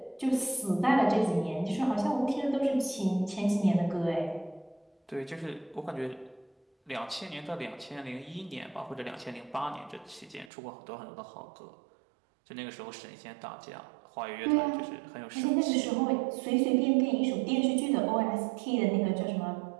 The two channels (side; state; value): left; drops out; at 10.5 s